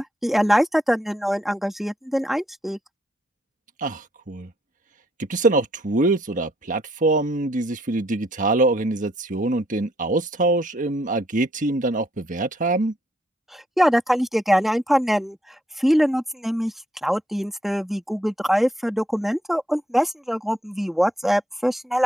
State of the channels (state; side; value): normal; both; correlation 0.72